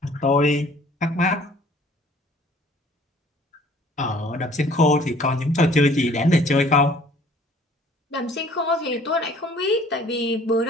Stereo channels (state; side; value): normal; both; correlation 0.54